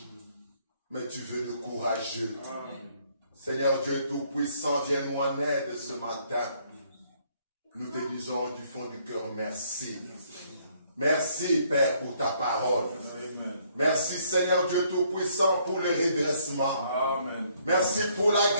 Mais tu veux le courageux. Seigneur Dieu Tout-Puissant, viens nous en aide ce matin. Nous te disons du fond du cœur merci. Merci, Père, pour ta parole. Merci, Seigneur Dieu Tout-Puissant, pour le redressement. Amen. Merci pour la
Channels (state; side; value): inverted; both; correlation -0.67